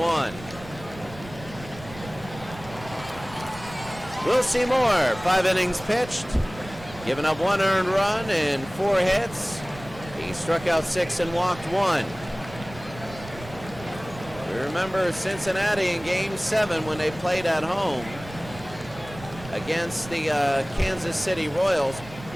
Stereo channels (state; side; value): noise; right; rumble, 16 dB below the sound